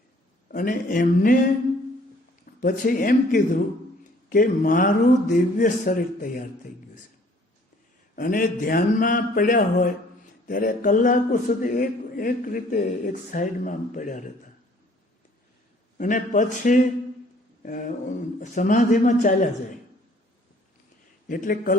અને એમને પછી એમ કીધું કે મારું દિવ્ય શરીર તૈયાર થઈ ગયું છે. અને ધ્યાનમાં પડ્યા હોય ત્યારે કલાકો સુધી એક રીતે એક સાઈડમાં પડ્યા રહેતા અને પછી સમાધિમાં ચાલ્યા જાય. એટલે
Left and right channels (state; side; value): normal; both; correlation 0.58